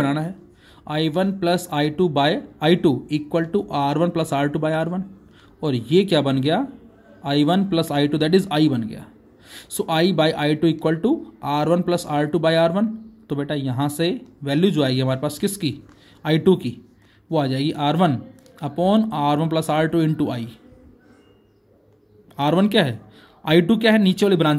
है, I1 plus I2 by I2 equal to R1 plus R2 by R1। और ये क्या बन गया? I1 plus I2 that is I बन गया। So I by I2 equal to R1 plus R2 by R1। तो बेटा यहाँ से वैल्यू जो आएगी हमारे पास किसकी? I2 की, वो आ जाएगी R1 upon R1 plus R2 into आई। R1 क्या है, I2 क्या है, नीचे वाली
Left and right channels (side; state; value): both; identical; correlation 1.00